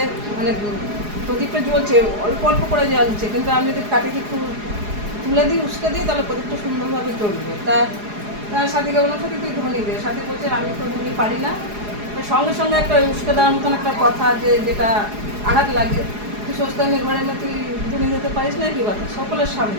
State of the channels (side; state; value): left; late; 4.8 ms